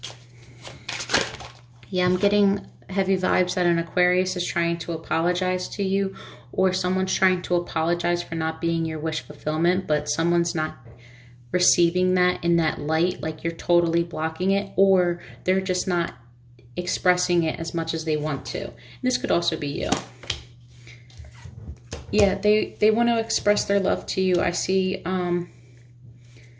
Yeah, I'm getting heavy vibes that an Aquarius is trying to apologize to you, or someone's trying to apologize for not being your wish fulfillment, but someone's not receiving that in that light, like you're totally blocking it, or they're just not expressing it as much as they want to. And this could also be you. Yeah, they want to express their love to you. I see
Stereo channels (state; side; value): identical; both; correlation 1.00